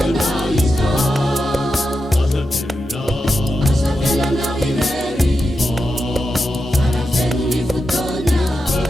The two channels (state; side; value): normal; both; correlation 0.88